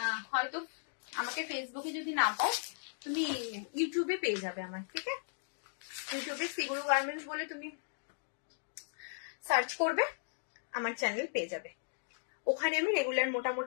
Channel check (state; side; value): silent; right; digital silence